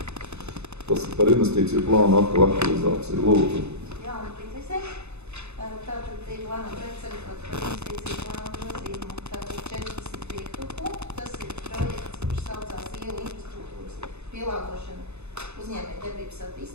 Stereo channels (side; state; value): left; late; 0.81 ms